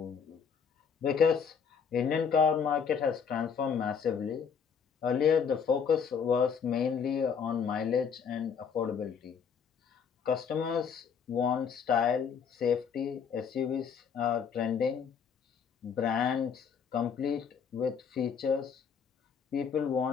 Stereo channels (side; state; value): right; quieter; 6.7 dB